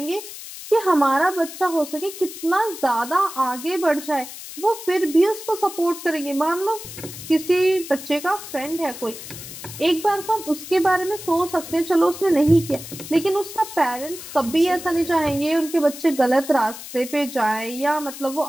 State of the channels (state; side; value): noise; left; hiss, 12 dB below the sound